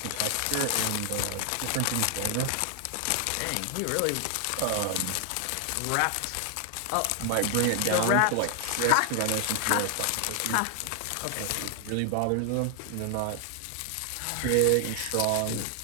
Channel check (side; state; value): both; different; correlation 0.00